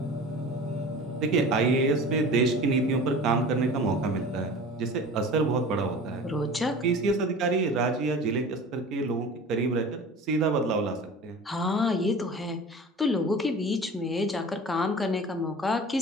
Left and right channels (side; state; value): both; normal; correlation 0.39